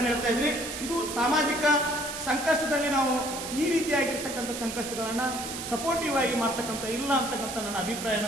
ಹೇಳ್ತಾ ಇದ್ದೀನಿ. ಇದು ಸಾಮಾಜಿಕ ಸಂಕಷ್ಟದಲ್ಲಿ ನಾವು ಈ ರೀತಿಯಾಗಿರ್ತಕ್ಕಂಥ ಸಂಕಷ್ಟಗಳನ್ನ ಸಪೋರ್ಟಿವ್ ಆಗಿ ಮಾಡ್ತಕ್ಕಂಥ ಇಲ್ಲ ಅಂತಕ್ಕಂಥ ನನ್ನ ಅಭಿಪ್ರಾಯನ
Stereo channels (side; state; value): right; noise; hiss, 7 dB below the sound